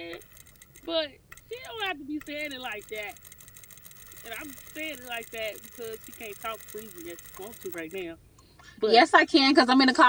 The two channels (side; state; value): both; identical; correlation 1.00